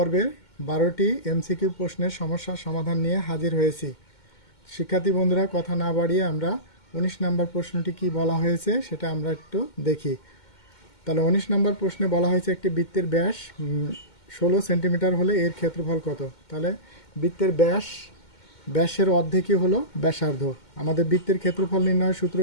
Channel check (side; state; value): right; late; 2.2 ms